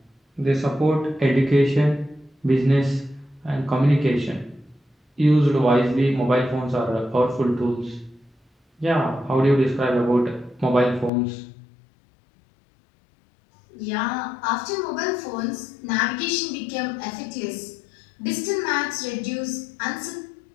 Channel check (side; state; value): right; drops out; at 11.1 s